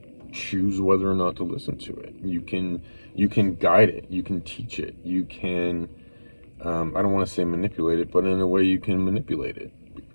choose whether or not to listen to it. You can guide it, you can teach it, you can I don't want to say manipulate it, but in a way you can manipulate it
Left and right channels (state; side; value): inverted; both; correlation -1.00